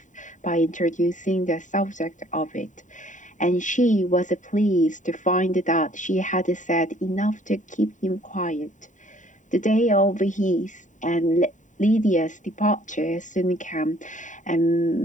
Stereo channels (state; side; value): late; right; 0.36 ms